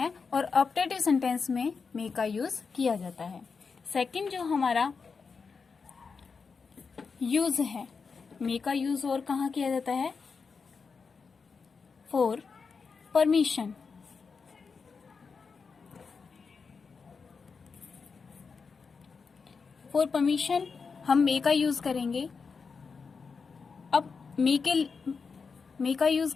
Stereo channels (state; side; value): quieter; right; 5.2 dB